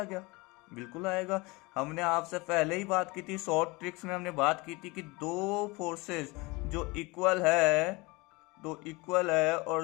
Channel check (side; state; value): right; quieter; 24.7 dB